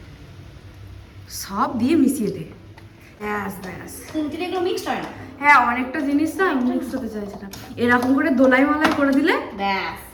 সব দিয়ে মিশিয়ে দে, ব্যাস ব্যাস। তিনটে এগুলো মিক্সড হয় না। হ্যাঁ অনেকটা জিনিস না মিক্স হতে চাইছে না, এরকম করে দোলাই মালাই করে দিলে ব্যাস,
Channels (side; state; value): both; identical; correlation 1.00